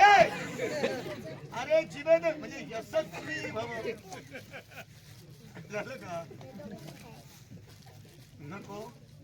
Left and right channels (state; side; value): identical; both; correlation 1.00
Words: अरे जिवेद म्हणजे यशस्वी भव. झालं का? नको.